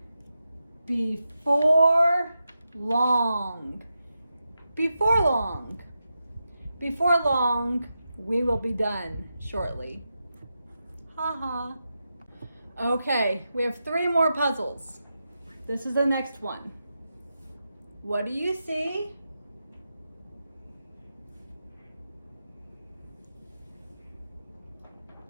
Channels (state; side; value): inverted; both; correlation -0.88